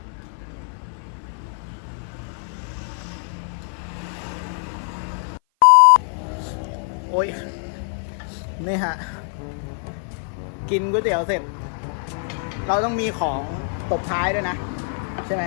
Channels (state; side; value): silent; right; 55 dB below the other